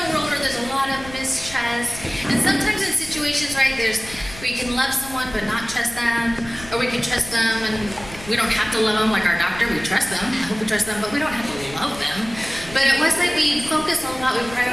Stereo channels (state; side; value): noise; left; rumble, 16 dB below the sound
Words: world where there's a lot of mistrust. And sometimes in situations, right, we can love someone but not trust them. Or we can trust them and we don't have to love them like our doctor. We trust them. I hope we trust them, but we don't have to love them. But at Westlake, we focus a lot. We